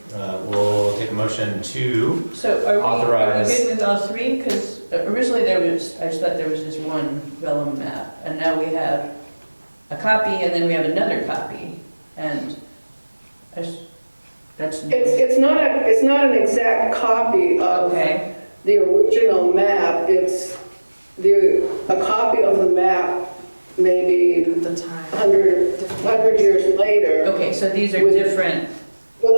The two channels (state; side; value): inverted; both; correlation -1.00